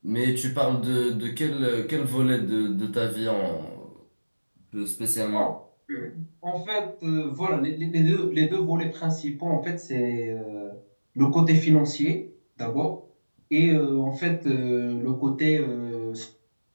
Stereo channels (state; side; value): inverted; both; correlation -1.00